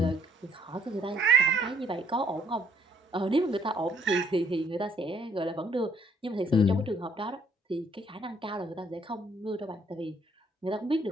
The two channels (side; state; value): both; normal; correlation 0.65